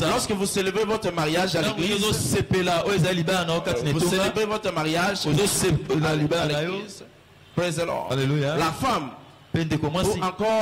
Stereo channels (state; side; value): identical; both; correlation 1.00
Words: vous célébrez votre mariage à l'église, vous célébrez votre mariage à l'église, praise the Lord. Alléluia. La femme ou